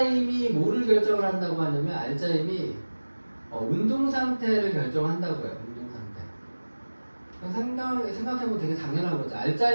뭐를 결정을 한다고 하냐면 알짜힘이 운동 상태를 결정한다고요. 운동 상태. 생각해보면 되게 당연한 거죠.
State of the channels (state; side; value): inverted; both; correlation -1.00